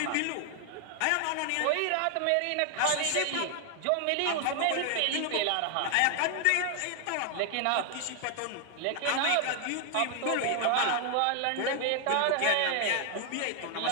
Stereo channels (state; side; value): different; both; correlation 0.00